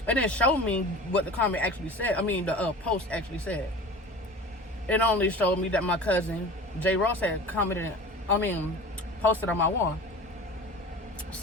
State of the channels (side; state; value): both; normal; correlation 0.37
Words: It didn't show me what the comment actually said. I mean, the post actually said. It only showed me that my cousin Jay Ross had posted on my wall.